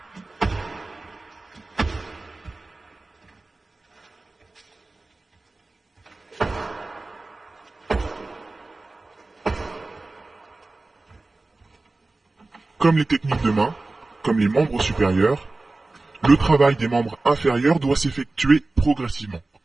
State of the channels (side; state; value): left; quieter; 3.2 dB